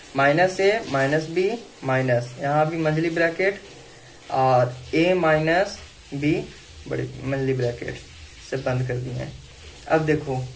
Minus A minus B minus, यहाँ भी मंझली ब्रैकेट और ए माइनस बी बड़ी मंझली ब्रैकेट से बंद कर दिए हैं। अब देखो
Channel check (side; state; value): both; identical; correlation 1.00